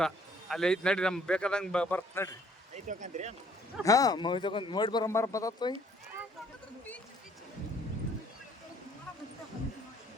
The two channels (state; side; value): normal; both; correlation 0.61